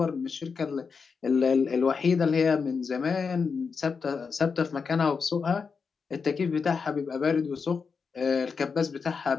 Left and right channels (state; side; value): quieter; right; 5.4 dB